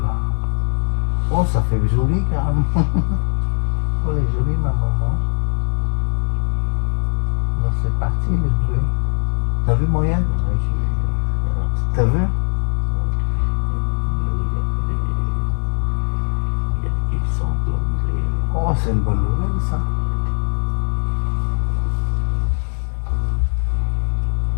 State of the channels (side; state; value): right; silent; 65 dB below the other